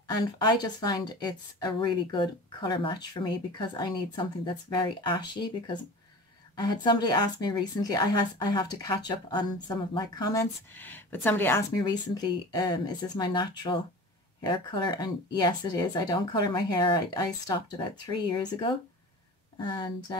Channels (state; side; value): normal; both; correlation 0.36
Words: And I just find it's a really good color match for me because I need something that's very ashy, because I had somebody ask me recently, I have to catch up on some of my comments, but somebody asked me recently, is this my natural hair color? And yes, it is. I don't color my hair. I stopped about 3 years ago, and